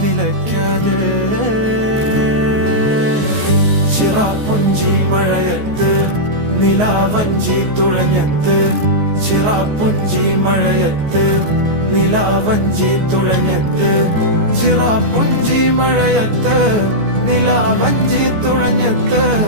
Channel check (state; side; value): late; left; 14 ms